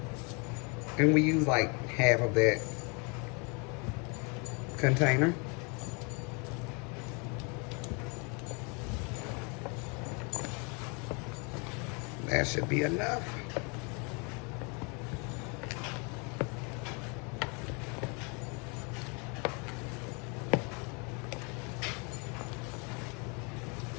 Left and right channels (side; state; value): right; quieter; 32.7 dB